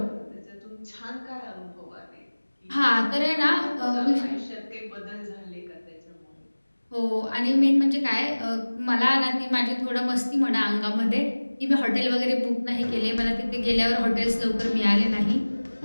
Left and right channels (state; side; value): inverted; both; correlation -1.00